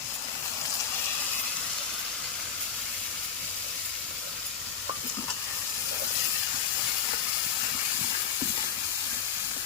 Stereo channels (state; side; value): quieter; right; 7.3 dB